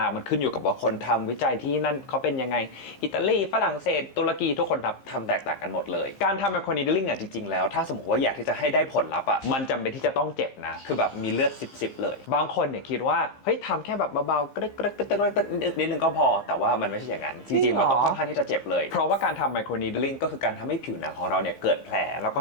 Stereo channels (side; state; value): right; late; 15 ms